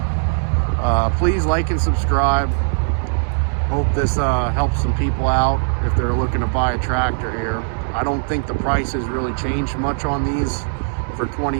please like and subscribe. Hope this helps some people out if they're looking to buy a tractor here. I don't think the price has really changed much on these for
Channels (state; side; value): silent; left; digital silence